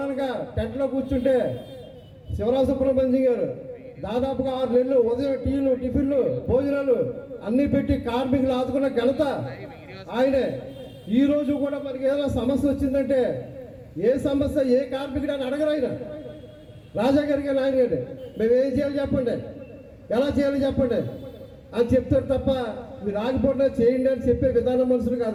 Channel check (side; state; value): both; identical; correlation 1.00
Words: టెంట్లో కూర్చుంటే శివరామ సుబ్రహ్మణ్యం గారు దాదాపుగా 6 నెలలు ఉదయం టీలు, టిఫిన్లు, భోజనాలు అన్నీ పెట్టి కార్మికులు ఆదుకున్న ఘనత ఆయనే. ఈ రోజు కూడా మనకి ఏదైనా సమస్య వచ్చిందంటే ఏ సమస్య ఏ కార్మికుడు అని అడగరు ఆయన. రాజా గారికి ఆయన గారు మేము ఏం చేయాలి చెప్పండి, ఎలా చేయాలి చెప్పండి అని చెప్తారు తప్ప మీరు ఆగిపోయినా చేయండి అని చెప్పే విధానం మనుషులు